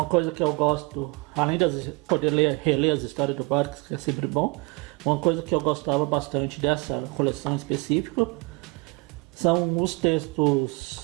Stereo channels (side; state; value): left; quieter; 27.9 dB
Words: coisa que eu gosto, além de poder reler as histórias do Barks, que é sempre bom, uma coisa que eu gostava bastante dessa coleção específica são os